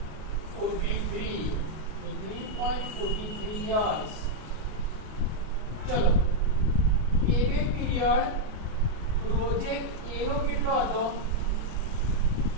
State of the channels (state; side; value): late; left; 33 ms